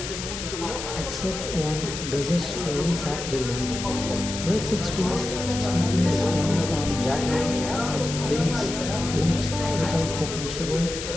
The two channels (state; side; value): noise; left; hiss, 7 dB below the sound